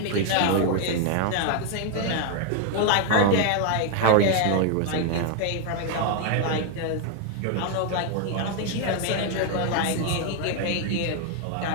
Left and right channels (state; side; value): different; both; correlation 0.01